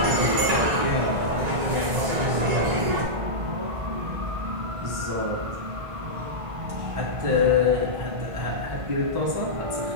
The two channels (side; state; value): left; late; 1.9 ms